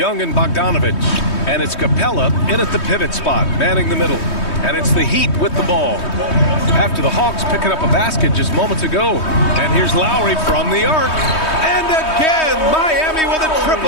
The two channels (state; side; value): late; right; 3.2 ms